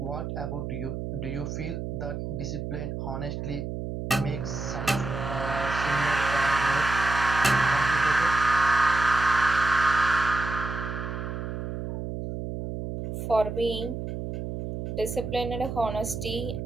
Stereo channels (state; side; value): noise; right; hum, 5 dB below the sound